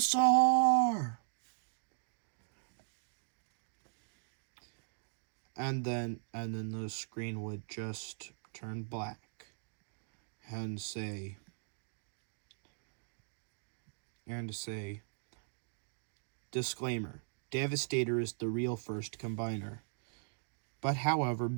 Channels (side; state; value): left; silent; digital silence